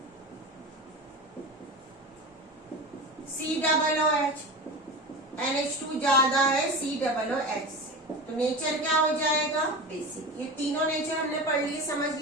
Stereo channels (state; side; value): normal; both; correlation 0.27